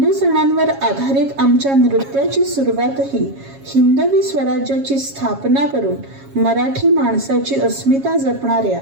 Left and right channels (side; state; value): left; late; 7.3 ms